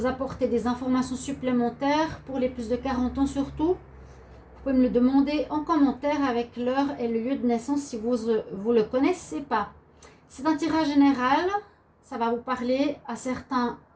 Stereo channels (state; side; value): identical; both; correlation 1.00